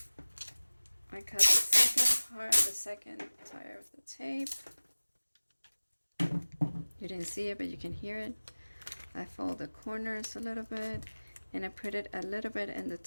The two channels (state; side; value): inverted; both; correlation -1.00